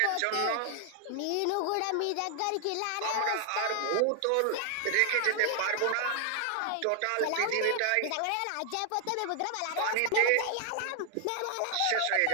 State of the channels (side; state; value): both; different; correlation 0.00